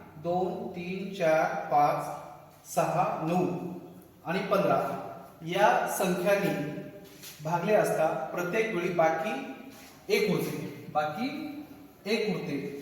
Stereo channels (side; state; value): both; identical; correlation 1.00